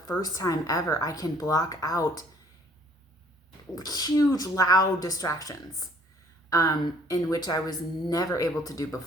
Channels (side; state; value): both; normal; correlation 0.58